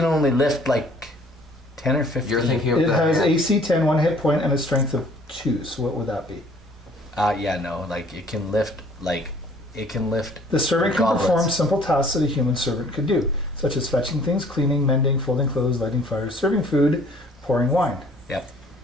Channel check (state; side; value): normal; both; correlation 0.56